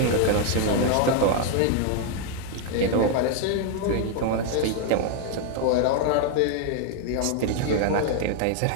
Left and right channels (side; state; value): both; different; correlation 0.00